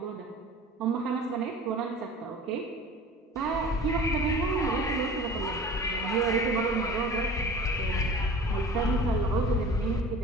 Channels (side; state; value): both; normal; correlation 0.41